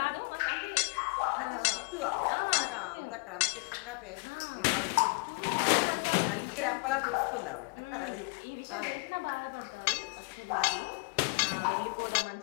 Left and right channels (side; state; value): right; quieter; 32.8 dB